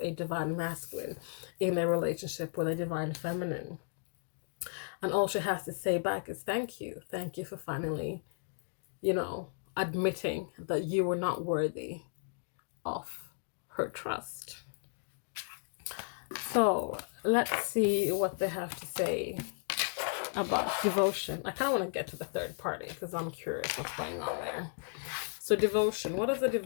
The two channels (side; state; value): right; silent; digital silence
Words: divine masculine in a relationship with a divine feminine. And all she has to say back is thank you. Thank you for finally, admitting that you were not worthy of her trust. So let's see what they have to say about devotion. I kind of want to get to the third party because I'm curious what's going on there. So devotion. What does the